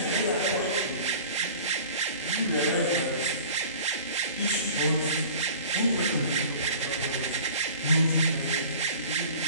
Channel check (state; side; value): inverted; both; correlation -0.44